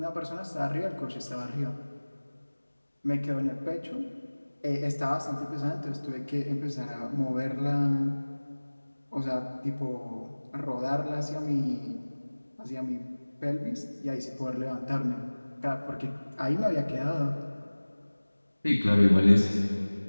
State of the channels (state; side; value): inverted; both; correlation -1.00